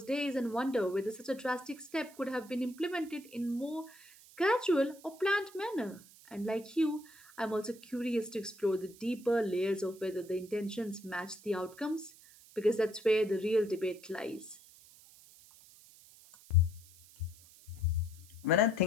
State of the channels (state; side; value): noise; right; hiss, 22 dB below the sound